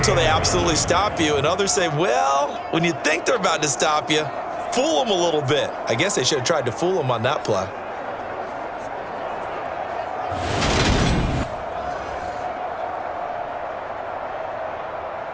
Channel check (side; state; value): both; identical; correlation 1.00